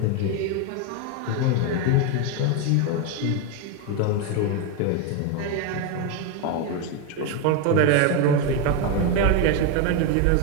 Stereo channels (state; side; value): different; both; correlation 0.02